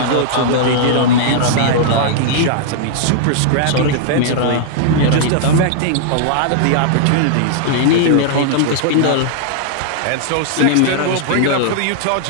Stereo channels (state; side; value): different; both; correlation -0.01